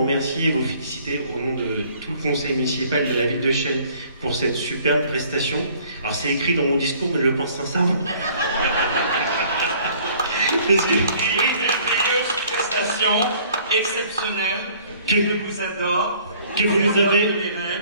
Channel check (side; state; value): both; inverted; correlation -0.56